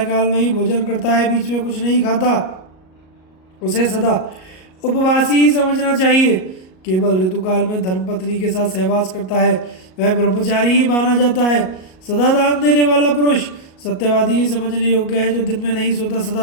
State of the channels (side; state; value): right; late; 38 ms